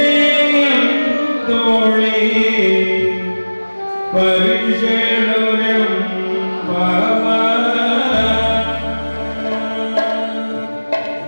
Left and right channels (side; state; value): both; inverted; correlation -1.00